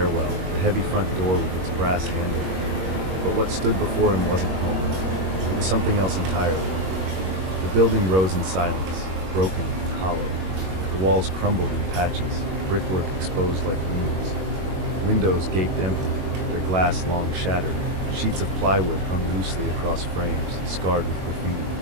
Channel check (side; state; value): left; late; 21 ms